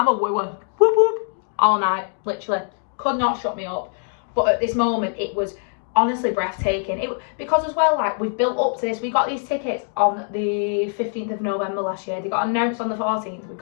a wooer, whoop whoop, all night, literally. Could not shut me up. But at this moment, it was honestly breathtaking. Because as well, like, we've built up to this. We got these tickets on the 15th of November last year. They got announced on the 14th,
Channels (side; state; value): right; silent; 57 dB below the other